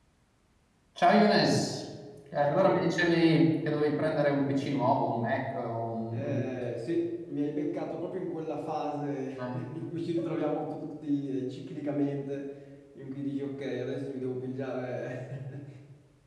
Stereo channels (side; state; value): both; identical; correlation 1.00